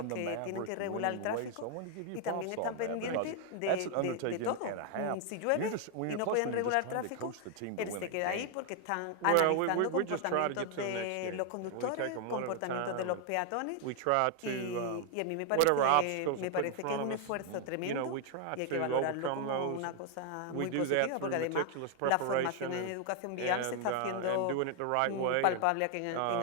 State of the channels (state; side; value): different; both; correlation 0.00